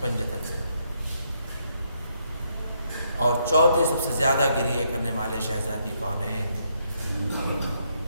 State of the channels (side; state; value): both; inverted; correlation -0.75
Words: پنجتن سے. اور چوتھے سب سے زیادہ گریہ کرنے والے شہزادی کونین.